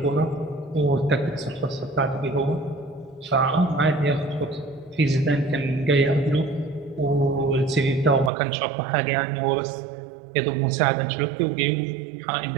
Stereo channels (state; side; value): drops out; left; at 8.3 s